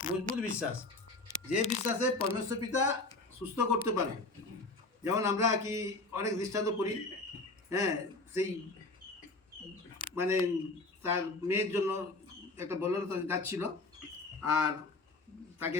মজবুত বিশ্বাস, যে বিশ্বাসে পরমেশ্বর পিতা সুস্থ করতে পারে। যেমন আমরা কি অনেক দৃষ্টান্ত করি, হ্যাঁ, সেই মানে তার মেয়ের জন্য একটা বললো যাচ্ছিল, আর তাকে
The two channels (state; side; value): quieter; right; 3.2 dB